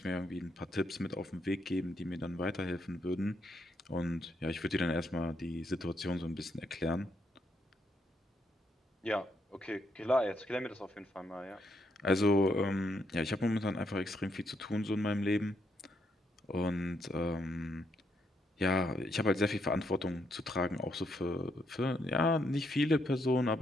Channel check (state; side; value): normal; both; correlation 0.77